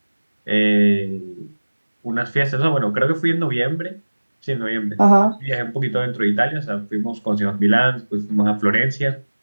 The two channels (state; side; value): inverted; both; correlation -1.00